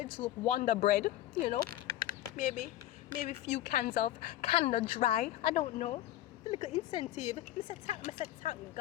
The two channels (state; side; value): quieter; right; 13.9 dB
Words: Wonder Bread, you know. Maybe a few cans of Canada Dry. I don't know. The little incentive. I said thank